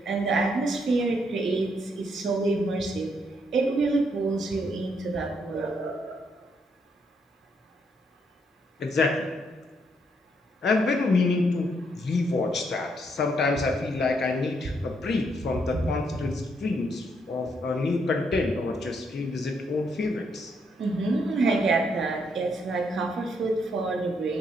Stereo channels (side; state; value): both; normal; correlation 0.74